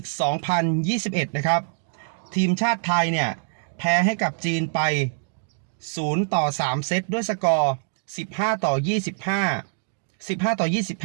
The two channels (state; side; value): silent; left; digital silence